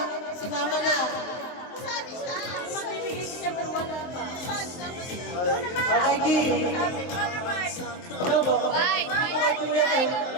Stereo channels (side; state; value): right; late; 23 ms